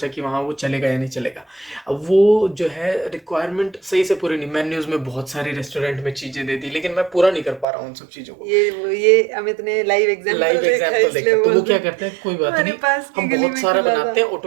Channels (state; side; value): drops out; left; at 7.7 s